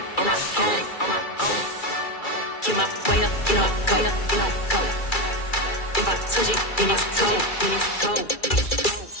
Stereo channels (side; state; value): right; late; 2.3 ms